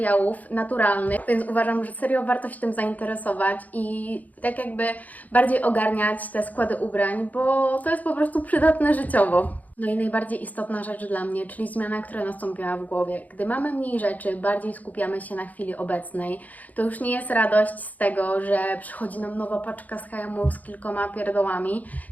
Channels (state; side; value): late; right; 0.078 ms